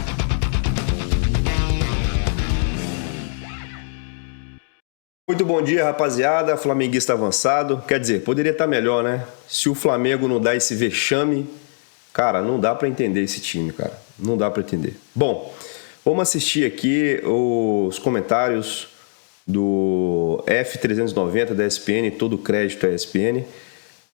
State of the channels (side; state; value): right; silent; digital silence